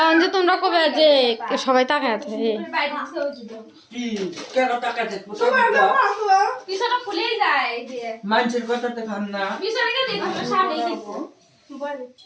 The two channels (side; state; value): both; identical; correlation 1.00